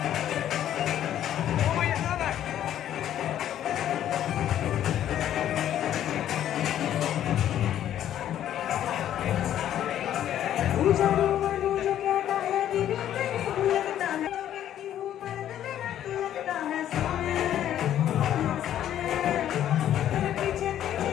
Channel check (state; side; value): quieter; right; 11.2 dB